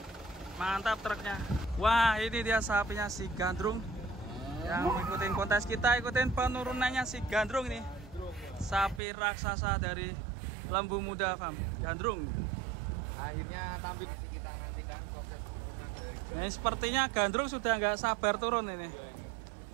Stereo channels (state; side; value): drops out; left; at 9.0 s